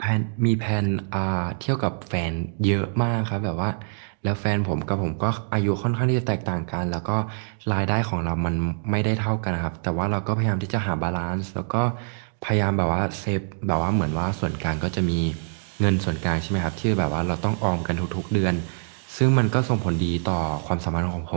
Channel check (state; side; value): silent; left; digital silence